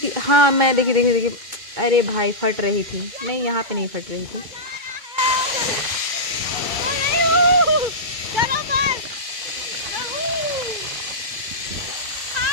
हाँ मैं देखिए देखिए देखिए, अरे भाई फट रही थी, नहीं यहाँ पे नहीं फट रही थी।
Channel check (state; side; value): late; left; 2.2 ms